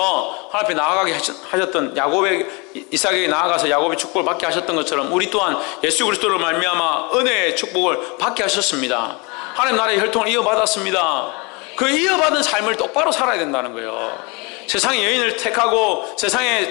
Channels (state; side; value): quieter; right; 29.2 dB